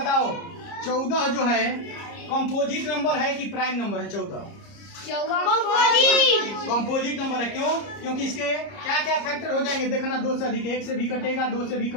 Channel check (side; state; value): right; late; 30 ms